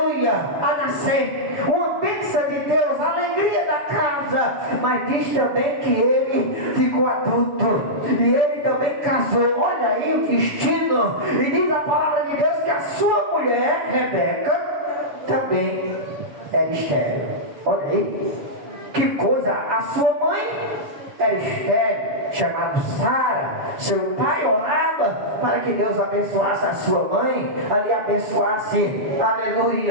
a nascer, uma bênção de Deus, a alegria da casa. Mas diz também que ele ficou adulto e ele também casou. Olha aí o destino. E diz a palavra de Deus que a sua mulher, Rebeca, também era estéril. Olha aí. Que coisa, a sua mãe era estéril, chamada Sara. Seu pai orava para que Deus abençoasse a sua mãe, ali abençoasse,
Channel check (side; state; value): left; late; 7.0 ms